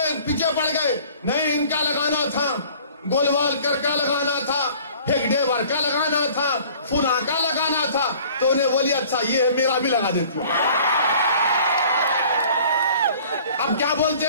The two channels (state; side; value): inverted; both; correlation -0.50